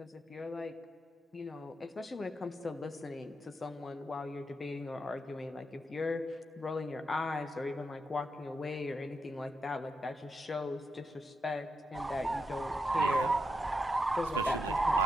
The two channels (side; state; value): both; normal; correlation 0.84